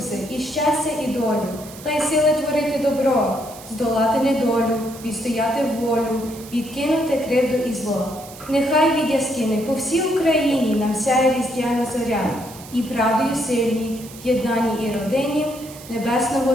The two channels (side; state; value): right; noise; hiss, 17 dB below the sound